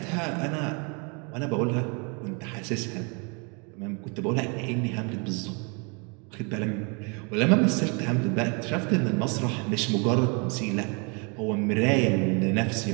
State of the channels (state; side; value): quieter; left; 33.6 dB